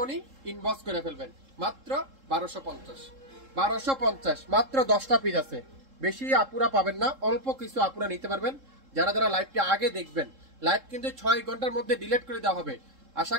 ইনবক্স করে ফেলবেন। মাত্র 1250, মাত্র 10টা পিস আছে, বেশি আপুরা পাবেন না, অল্প কিছু আপুরা নিতে পারবেন। যারা যারা লাইভটা আগে দেখবেন, লাইভ কিন্তু 6 ঘন্টার মধ্যে ডিলিট করে দেওয়া হবে। আশা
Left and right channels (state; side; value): late; left; 3.7 ms